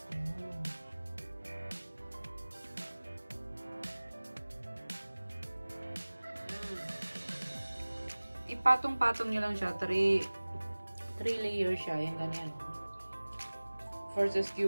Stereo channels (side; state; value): both; inverted; correlation -1.00